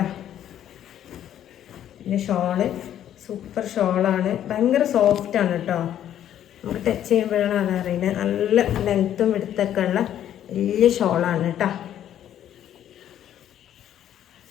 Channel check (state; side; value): quieter; right; 10.9 dB